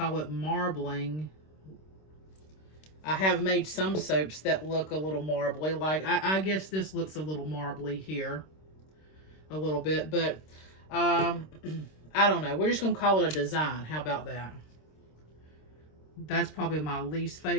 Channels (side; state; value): right; late; 26 ms